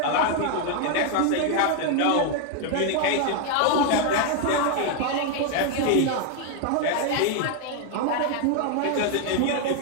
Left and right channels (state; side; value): different; both; correlation 0.01